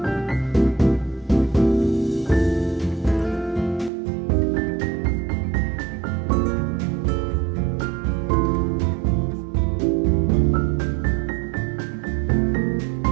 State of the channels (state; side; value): drops out; left; at 3.9 s